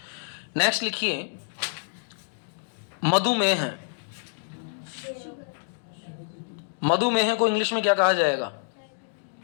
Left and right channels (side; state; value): right; silent; digital silence